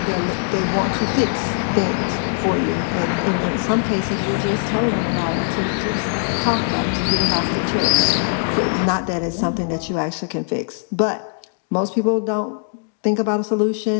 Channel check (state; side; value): silent; right; digital silence